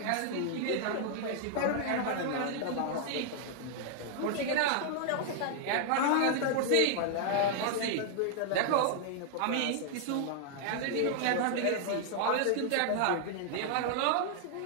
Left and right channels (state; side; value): different; both; correlation 0.00